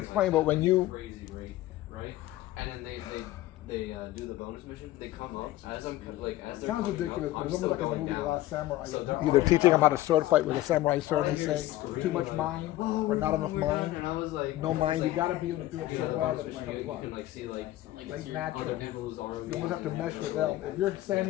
explain, like, but when you crazy rate, right? And then they do the bonus mission. They come up as I'm like as they're sounds coming ridiculous, up, but I'm it's almost still like in the going movie The down. Last Samurai. So they're Either all teaching them how down. to sword fight with a samurai sword, All I they hear is say screaming, too much like, mind "Oh, or not enough we're done," mind. And I was like, No mind. You like, got to be able to do it yeah, so the well bonus that it's mission, like you what? can like see like Like other natural. people's ROVs. You almost have to mesh with them. If you're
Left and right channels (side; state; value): right; quieter; 15.9 dB